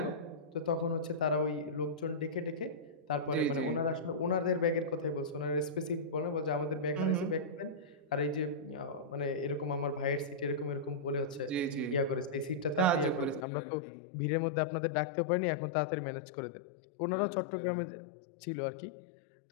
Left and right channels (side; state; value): right; drops out; at 13.5 s